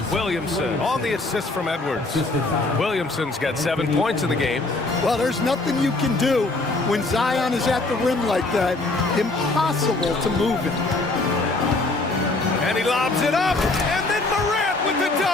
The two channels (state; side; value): quieter; right; 3.2 dB